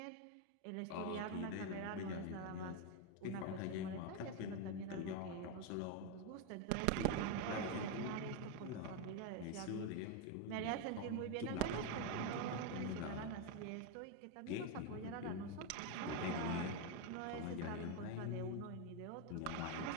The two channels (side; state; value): both; different; correlation 0.02